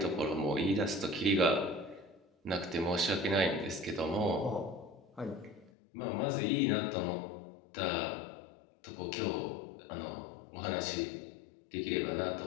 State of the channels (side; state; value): right; drops out; at 5.7 s